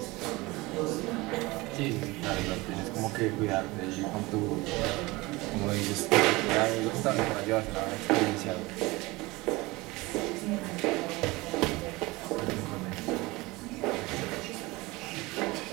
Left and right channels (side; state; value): left; quieter; 22.1 dB